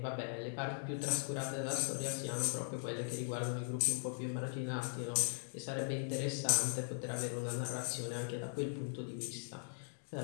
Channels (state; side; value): silent; right; digital silence